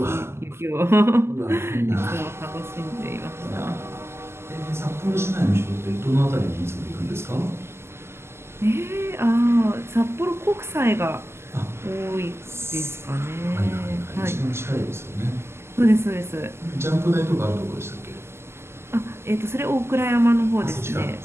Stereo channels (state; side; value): late; left; 0.12 ms